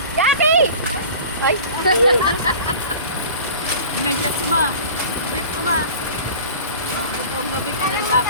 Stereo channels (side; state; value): both; inverted; correlation -0.40